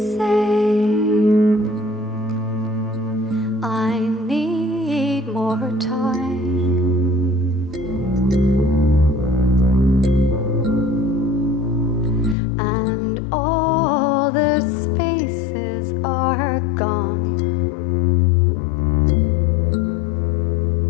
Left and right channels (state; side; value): drops out; right; at 12.4 s